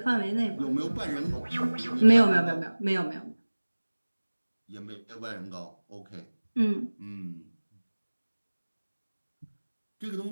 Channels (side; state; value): both; inverted; correlation -1.00